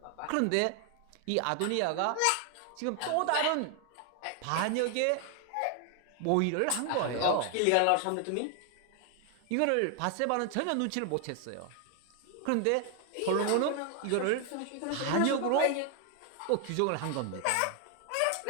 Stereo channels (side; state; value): both; different; correlation 0.00